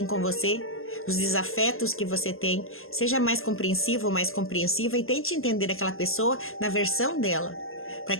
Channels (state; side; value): late; right; 0.61 ms